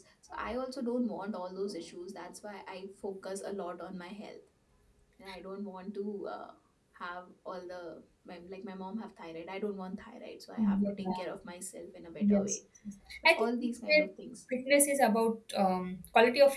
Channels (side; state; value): both; identical; correlation 1.00